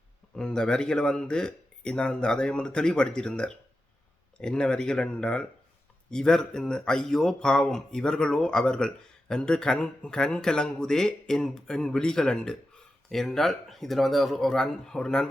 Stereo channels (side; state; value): both; normal; correlation 0.91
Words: இந்த வரிகளை நான் அதை தெளிவுபடுத்தியிருந்தார். என்ன வரிகள் என்றால், இவர் ஐயோ பாவம் இவர்களோ அவர்கள் என்று கண் கலங்குதே என் விழிகள் அண்டு என்றால், இதில் ஒரு